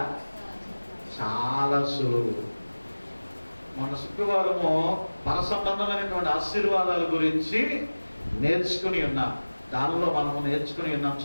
చాలా సులువు. మన శుక్రవారము పర సంబంధమైనటువంటి ఆశీర్వాదాల గురించి నేర్చుకుని ఉన్నాం. దానిలో మనము నేర్చుకుని ఉన్నాం.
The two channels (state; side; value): inverted; both; correlation -1.00